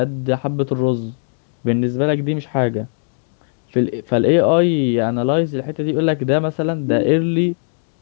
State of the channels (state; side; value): silent; right; 67 dB below the other